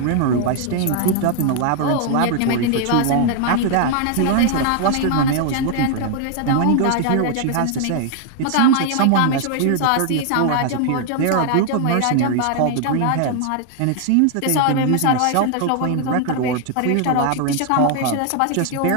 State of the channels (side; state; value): both; different; correlation 0.00